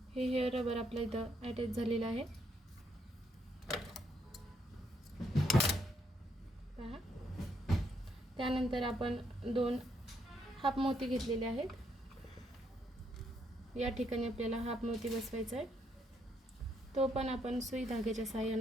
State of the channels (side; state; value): both; normal; correlation 0.74